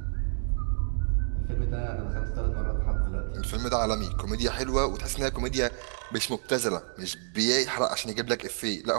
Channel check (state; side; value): silent; left; 59 dB below the other